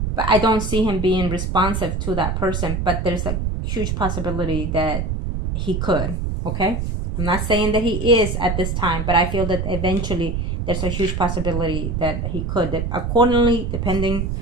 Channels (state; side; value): noise; right; rumble, 2 dB below the sound